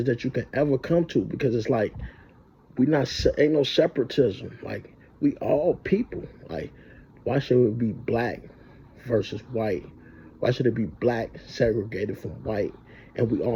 that you can ever come to, because it's like, we not, ain't no separatism. Like, we all people. Like, why should it be black versus white? Why should it be black segregated from white and we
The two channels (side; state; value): both; identical; correlation 1.00